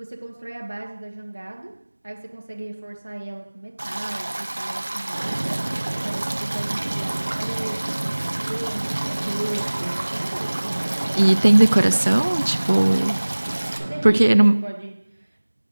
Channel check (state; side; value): inverted; both; correlation -1.00